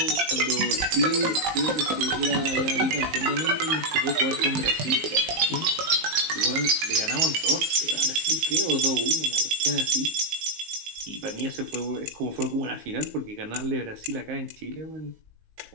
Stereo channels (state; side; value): late; left; 19 ms